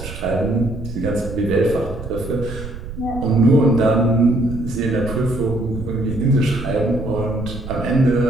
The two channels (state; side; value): noise; right; rumble, 10 dB below the sound